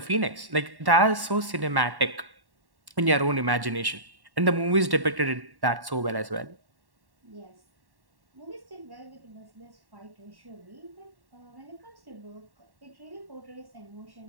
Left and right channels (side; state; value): left; late; 1.1 ms